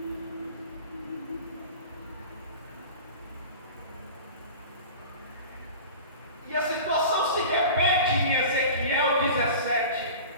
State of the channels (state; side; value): inverted; both; correlation -0.37